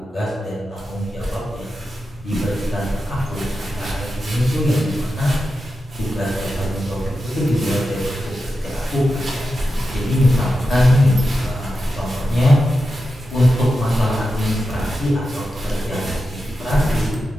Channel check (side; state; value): both; normal; correlation 0.90